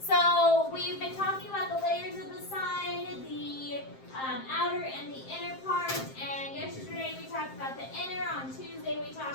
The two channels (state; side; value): late; right; 7.6 ms